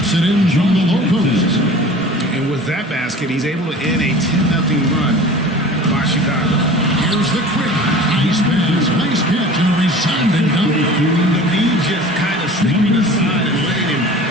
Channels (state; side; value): normal; both; correlation 0.41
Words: it in from the low post. And with that basket, he's able to end a 10-0 run by Chicago. Here's the Quick. Nice pass, nice catch, and a resounding dunk. The knee just kind of slipping aside and letting him